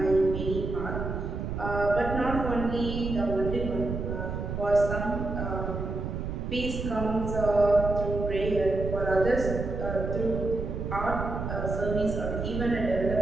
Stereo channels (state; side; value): noise; right; rumble, 4 dB below the sound